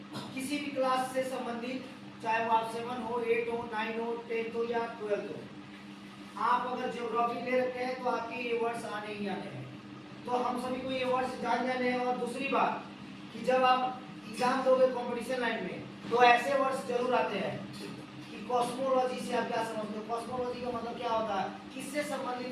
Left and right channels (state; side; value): identical; both; correlation 1.00